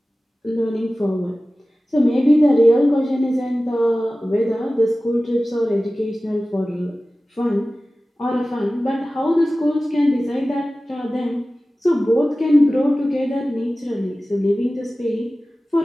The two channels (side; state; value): both; normal; correlation 0.96